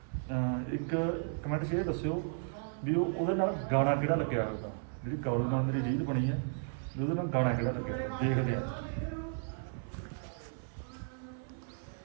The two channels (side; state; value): left; silent; 55 dB below the other